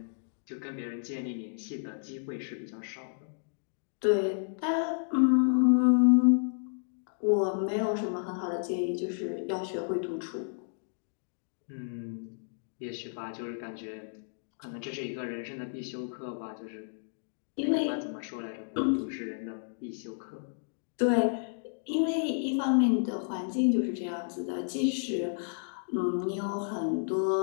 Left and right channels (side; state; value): right; silent; digital silence